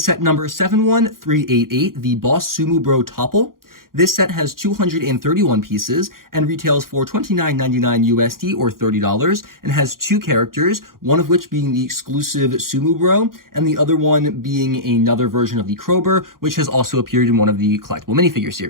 number 71388, the Boss Sumo Bro Topple. This set has 231 pieces and retails for $29.99 USD or $30 and has two characters, one of which being the exclusive Sumo Bro and the other one being another version of the Crowbar, which has also appeared in one of the collectible minifigure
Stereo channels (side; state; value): left; late; 0.92 ms